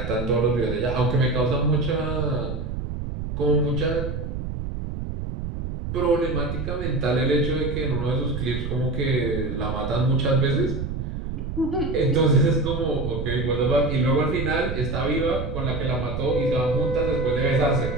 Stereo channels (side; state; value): right; noise; rumble, 5 dB below the sound